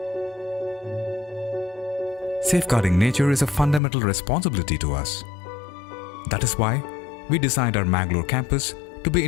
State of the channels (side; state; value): right; drops out; at 3.8 s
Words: Safeguarding nature is a fundamental responsibility to us. That is why we designed our Mangalore campus to be